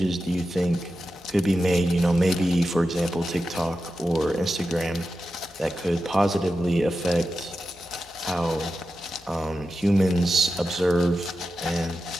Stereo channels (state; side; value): normal; both; correlation 0.91